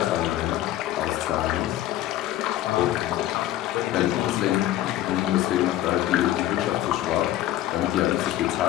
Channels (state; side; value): quieter; right; 13.8 dB